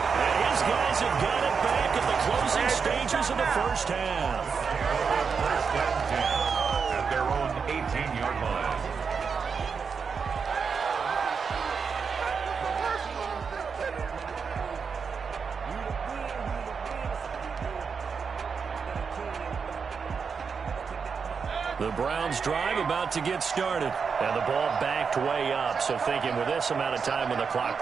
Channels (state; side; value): quieter; left; 5.8 dB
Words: And his guys have got it back at the closing stages of the first half. First and 10 at their own 18-yard line. The Browns drive about to get started. And the ball backed way up. So thinking with this amount of time on the clock,